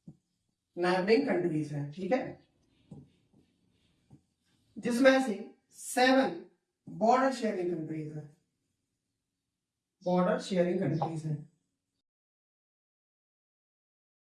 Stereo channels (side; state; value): both; identical; correlation 1.00